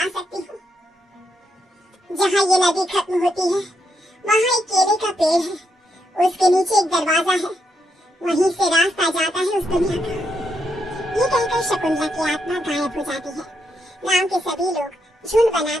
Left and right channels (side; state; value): both; normal; correlation 0.80